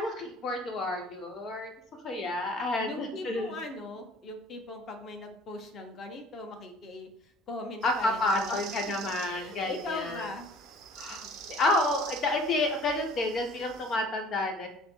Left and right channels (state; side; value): normal; both; correlation 0.50